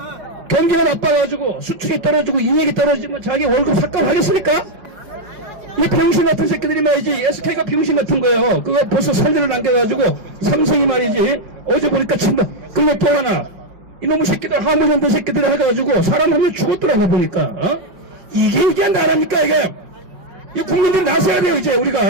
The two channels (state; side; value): late; left; 5.5 ms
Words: 경기가 나빠가지고 수출이 떨어지고 인력이 떨어지면 자기 월급 삭감하겠습니까? 이 병신 같은 새끼들이 말이지. SK가 병신 같은 거예요. 그거 벌써 선례를 남겨가지고 삼성이 말이지. 어제 보니까 그리고 또 하나, 이놈의 새끼들, 하물현대 새끼들이 해가지고 사람 한 명 죽었더라고 보니까. 이게 나랍니까 이게? 이 국민들 나서야 돼요. 이제